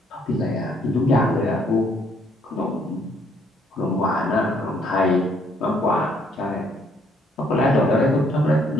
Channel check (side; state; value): both; normal; correlation 0.66